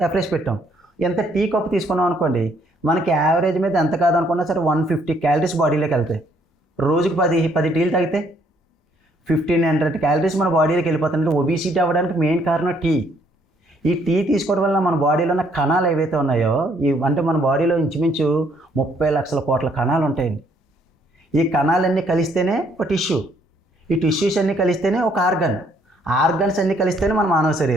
ఎఫ్రెష్ పెట్టాం. ఎంత టీ కప్పు తీసుకున్నాం అనుకోండి, మనకి యావరేజ్ మీద ఎంత కాదనుకున్నా సరే 150 క్యాలరీస్ బాడీలోకి వెళ్తాయి. రోజుకి 10 టీలు తాగితే 1500 క్యాలరీస్ మన బాడీలోకి వెళ్ళిపోతాయి. ఒబిసిటీ అవ్వడానికి మెయిన్ కారణం టీ. ఈ టీ తీసుకోవడం వల్ల మన బాడీలో ఉన్న కణాలు ఏవైతే ఉన్నాయో, అంటే మన బాడీలో ఇంచుమించు 30 లక్షల కోట్ల కణాలు ఉంటాయండి. ఈ కణాలన్నీ కలిస్తేనే ఒక టిష్యూ, ఈ టిష్యూస్ అన్నీ కలిస్తేనే ఒక ఆర్గన్స్ అన్నీ కలిస్తేనే మన మానవ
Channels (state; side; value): normal; both; correlation 0.67